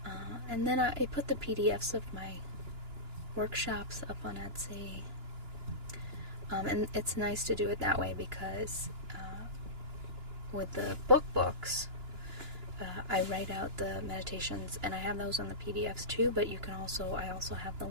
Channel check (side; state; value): left; late; 2.9 ms